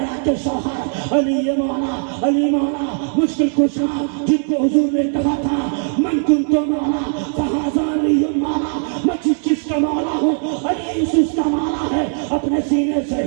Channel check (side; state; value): left; silent; 64 dB below the other